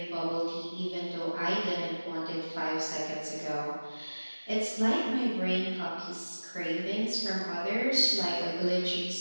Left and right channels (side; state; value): both; inverted; correlation -1.00